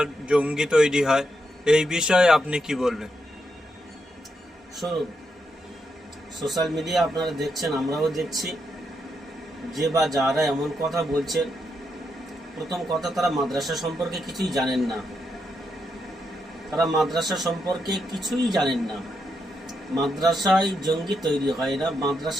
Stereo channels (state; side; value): normal; both; correlation 0.82